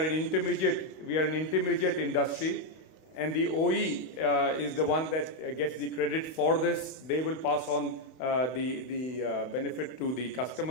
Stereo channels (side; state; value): right; late; 32 ms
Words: an intermediate industry, and the OE is the one that gets the credit for this. They will pass on the benefit to the